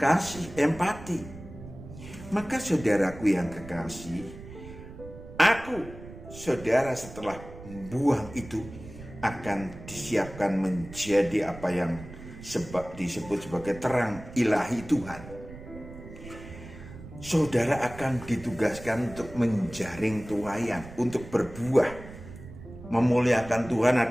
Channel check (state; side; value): noise; right; rumble, 15 dB below the sound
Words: empati. Maka saudaraku yang kekasih, aku, saudara setelah buang itu akan disiapkan menjadi apa yang disebut sebagai terang ilahi Tuhan. Saudara akan ditugaskan untuk menjaring tuayan, untuk berbuah. Memuliakan Tuhan